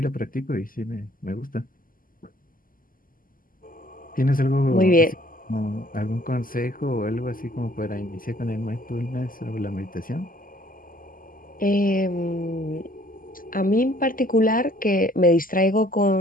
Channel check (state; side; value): late; right; 0.41 ms